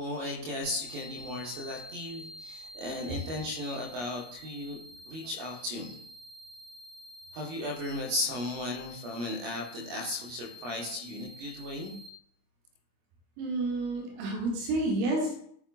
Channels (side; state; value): left; late; 25 ms